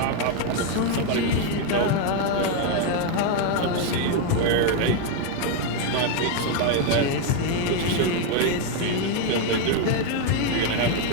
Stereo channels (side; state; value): both; different; correlation 0.01